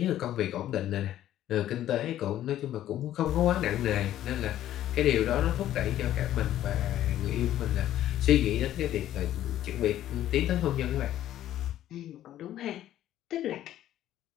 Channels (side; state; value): right; quieter; 12.5 dB